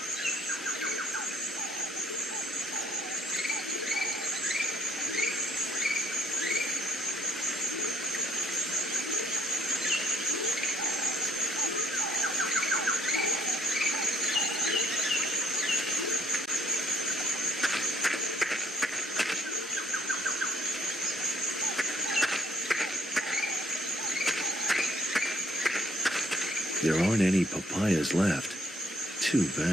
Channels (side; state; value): both; normal; correlation 0.68